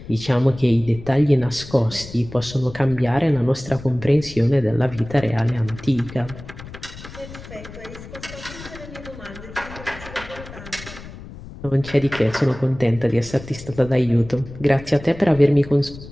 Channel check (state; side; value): noise; left; rumble, 15 dB below the sound